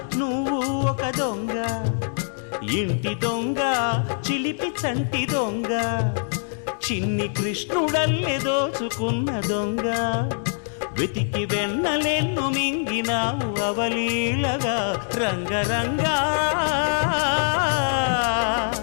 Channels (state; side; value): silent; right; digital silence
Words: నువ్వు ఒక దొంగ, ఇంటి దొంగ చిలిపి చంటి దొంగ, చిన్ని కృష్ణుడల్లే దోచుకున్న దొంగ, వెతికి వెన్నలెన్ను మింగినావు అవలీలగా. రంగరంగ